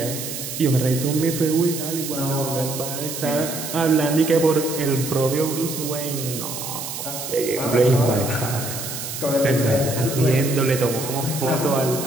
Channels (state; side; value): noise; right; hiss, 7 dB below the sound